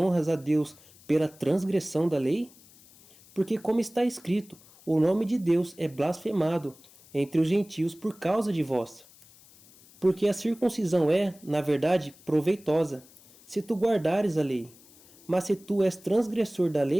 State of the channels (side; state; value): left; noise; hiss, 25 dB below the sound